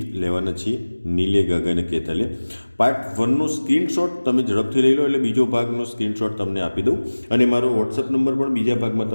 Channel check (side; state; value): both; inverted; correlation -1.00